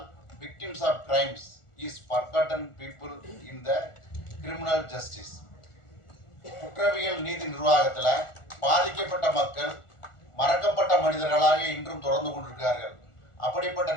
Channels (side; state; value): right; late; 1.4 ms